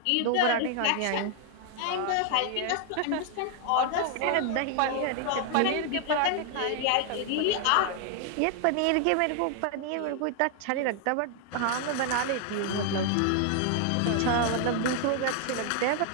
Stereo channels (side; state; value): both; different; correlation 0.00